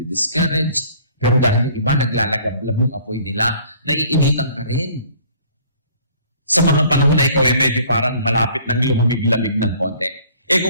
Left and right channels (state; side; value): inverted; both; correlation -0.54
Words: Pero dahil yung iba naglalagablab yung apoy nila, naiinitan ka rin. Sa mga panahon na ikaw ay medyo parang malapit ng lumamig-lamig ng konti.